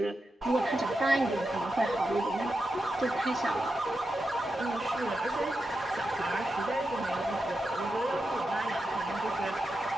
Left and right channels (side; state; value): both; normal; correlation 0.88